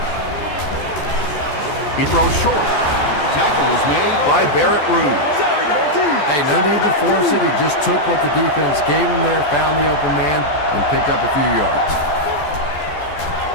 He throws short. Tackle was made by Barrett Rude. Hey, no need to force it. He just took what the defense gave him there, found the open man, and picked up a few yards.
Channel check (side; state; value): right; late; 14 ms